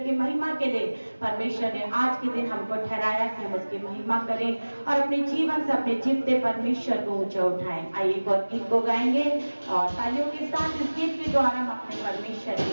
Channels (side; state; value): both; inverted; correlation -1.00